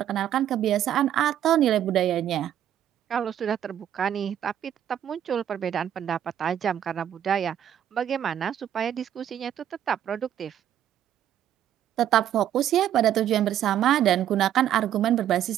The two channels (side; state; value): left; quieter; 10.7 dB